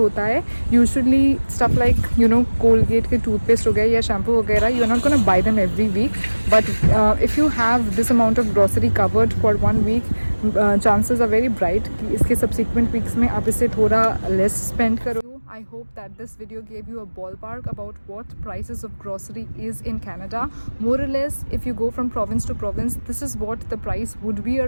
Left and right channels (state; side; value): inverted; both; correlation -1.00